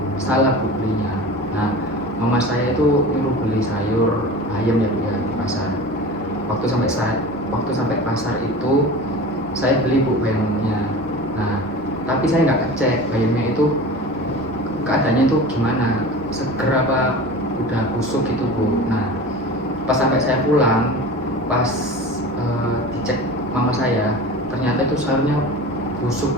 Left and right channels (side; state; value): both; normal; correlation 0.35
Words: salah Bu belinya. Nah, mama saya itu nyuruh beli sayur ayam ya Bu ya di pasar. Waktu sampai pasar itu saya beli Bu bayamnya. Nah, tapi saya nggak ngecek bayamnya itu keadaannya itu gimana, seger apa udah busuk gitu Bu. Nah, pas sampai saya pulang, pas dicek mama saya, ternyata itu sayurnya busuk